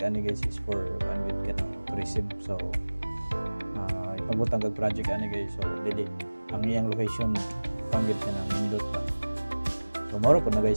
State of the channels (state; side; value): inverted; both; correlation -1.00